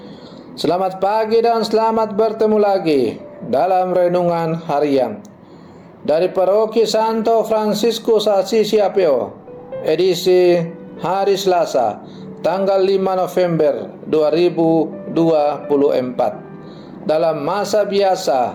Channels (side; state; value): both; identical; correlation 1.00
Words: selamat pagi dan selamat bertemu lagi dalam renungan harian dari Paroki Santo Fransiskus Assisi Apio, edisi hari Selasa, tanggal 5 November 2024, dalam masa